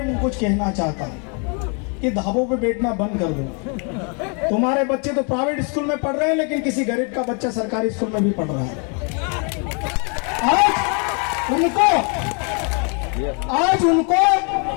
मैं कुछ कहना चाहता हूं कि ढाबों पे बैठना बंद कर दो। तुम्हारे बच्चे तो प्राइवेट स्कूल में पढ़ रहे हैं, लेकिन किसी गरीब का बच्चा सरकारी स्कूल में भी पढ़ रहा है। आज उनको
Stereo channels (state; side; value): quieter; right; 36.9 dB